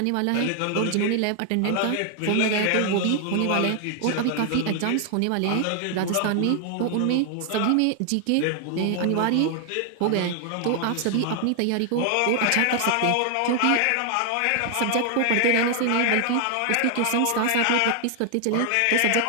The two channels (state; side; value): different; both; correlation 0.00